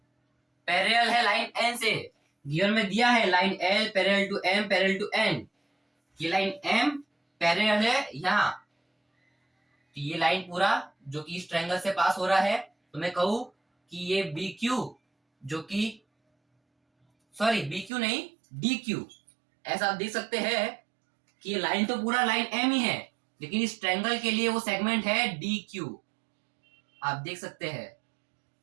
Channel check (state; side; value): drops out; left; at 17.9 s